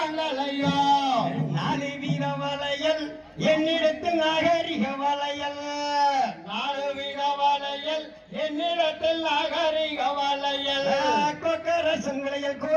4 வீர வளையல் என்னிடத்தில் நாகரிக வளையல் 4 வீர வளையல் என்னிடத்தில் நாகரிக வளையல் கொக்கரசன் வளையல்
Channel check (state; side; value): identical; both; correlation 1.00